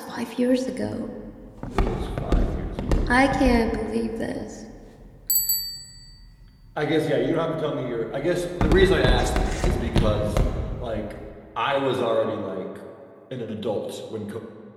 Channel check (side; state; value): both; identical; correlation 1.00